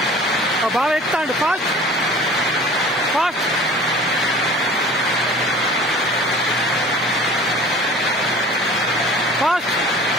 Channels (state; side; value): normal; both; correlation 0.44